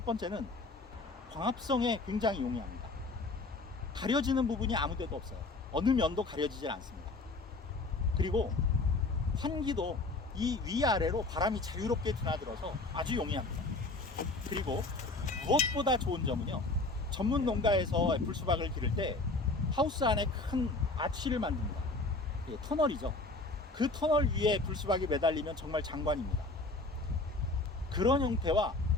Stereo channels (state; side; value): quieter; right; 3.2 dB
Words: 번째는 광합성에 굉장히 용이합니다. 가려지는 부분이 아무 데도 없어요. 어느 면도 가려지질 않습니다. 그리고 환기도 이 위아래로 바람이 자유롭게 드나들어서 아주 용이합니다. 그리고 무엇보다 좋은 점은요, 전문 농가에서 애플 수박을 기를 때 하우스 안에 큰 아치를 만듭니다. 터널이죠. 그 터널 위에 불수박이 매달리면 정말 장관입니다. 그런 형태와